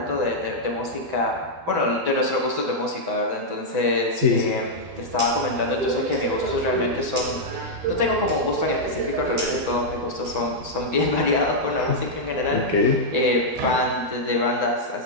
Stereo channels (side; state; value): left; late; 12 ms